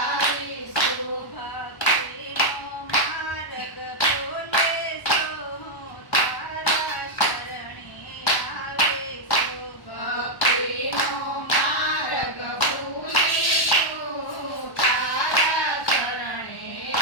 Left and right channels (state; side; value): late; right; 1.1 ms